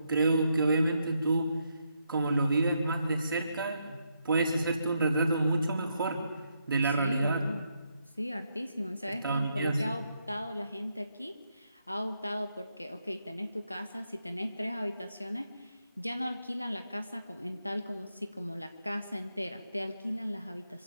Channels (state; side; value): inverted; both; correlation -0.79